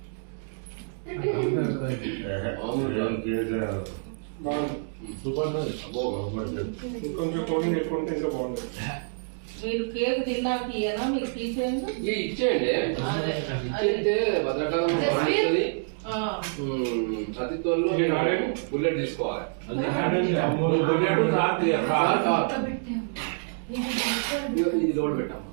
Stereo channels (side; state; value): left; silent; digital silence